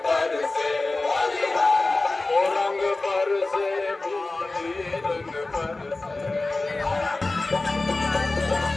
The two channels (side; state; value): right; quieter; 3.2 dB